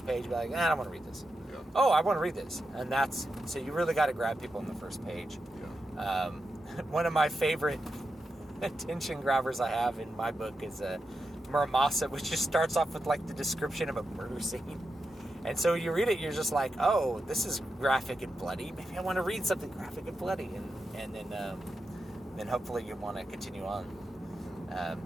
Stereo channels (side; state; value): both; normal; correlation 0.88